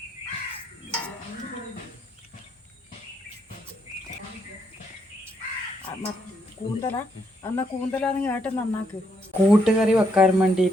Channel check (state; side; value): normal; both; correlation 0.75